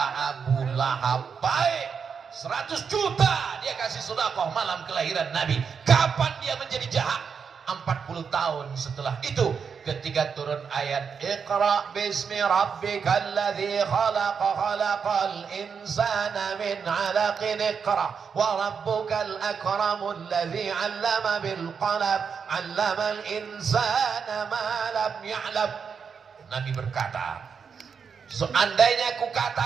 Abu Lahab baik. 100 juta dia kasih sedekah malam kelahiran Nabi. Kapan dia menjadi jahat? 40 tahun setelah itu, ketika turun ayat Iqra bismi rabbikal ladzi khalaq khalaqal insana min 'alaqin iqra wa rabbukal akramul ladzi 'allama bil qalam 'allamal insana ma lam ya'lam. Nabi berkata, seandainya aku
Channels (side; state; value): left; quieter; 6.3 dB